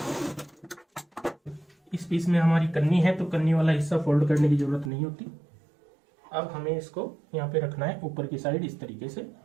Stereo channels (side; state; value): left; drops out; at 4.9 s